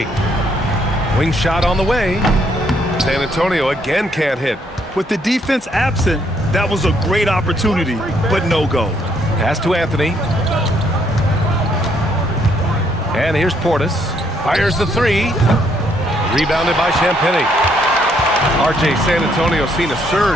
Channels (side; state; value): both; normal; correlation 0.70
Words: Wing shot on the way. San Antonio again can't hit. With the defense absent, that was a great opportunity, but no go. Pass to Anthony. And here's Portis. Fires the three. Rebounded by Champagnie. RJ, San Antonio seen a